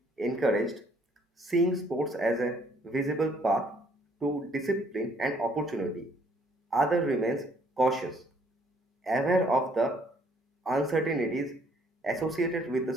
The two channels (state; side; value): normal; both; correlation 0.64